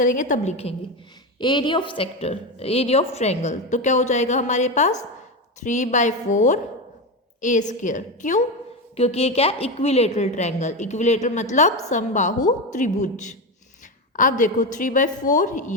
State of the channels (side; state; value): both; normal; correlation 0.16